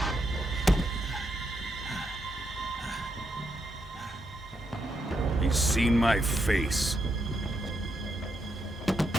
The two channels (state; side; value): normal; both; correlation 0.81